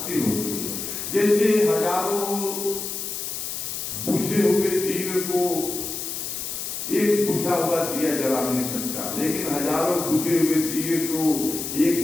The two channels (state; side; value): noise; left; hiss, 5 dB below the sound